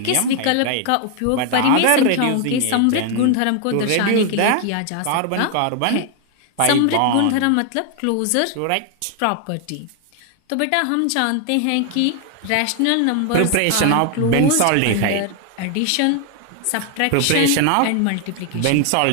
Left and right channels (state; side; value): different; both; correlation 0.00